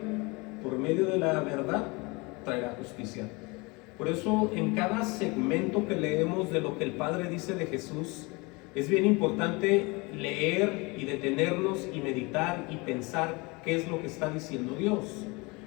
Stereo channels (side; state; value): right; quieter; 26.5 dB